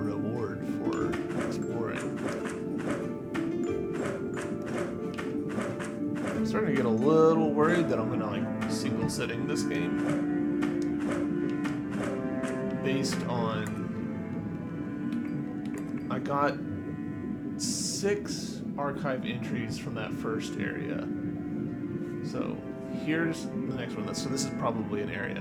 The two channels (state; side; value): identical; both; correlation 1.00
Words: for exploring. I'm starting to get a little worried that I'm gonna like single sitting this game based on I got 6 archive entries from that first area. So here's the next one. So this is probably an